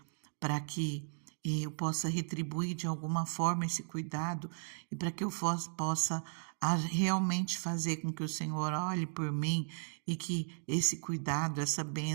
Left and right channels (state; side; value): silent; left; digital silence